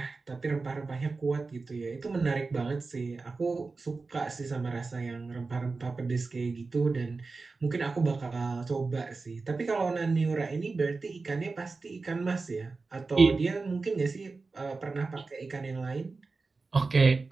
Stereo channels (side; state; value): left; quieter; 4.0 dB